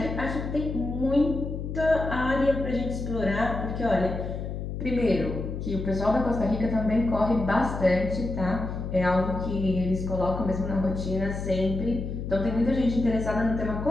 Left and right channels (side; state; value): left; noise; hum, 5 dB below the sound